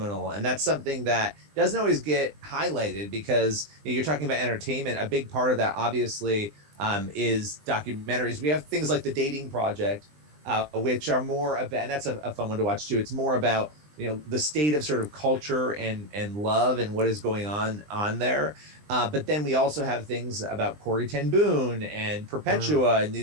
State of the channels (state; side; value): late; left; 20 ms